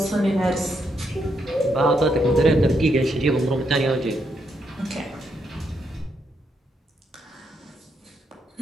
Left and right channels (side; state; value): both; normal; correlation 0.78